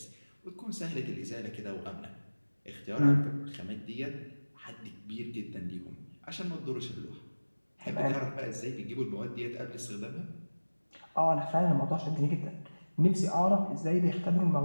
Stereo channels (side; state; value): both; inverted; correlation -1.00